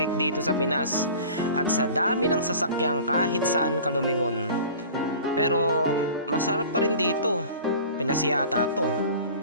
dito sa Pinas at sa dami ng sasakyang kahit saan ka lumingon. Pero masarap pa rin dito. Pinas yata to.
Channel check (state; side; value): inverted; both; correlation -0.42